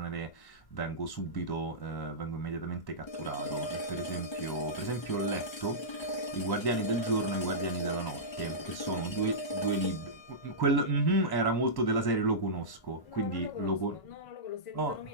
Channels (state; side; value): late; right; 1.3 ms